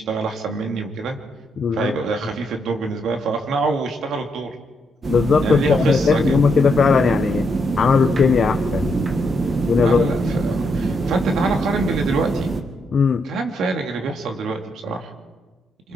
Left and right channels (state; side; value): normal; both; correlation 0.78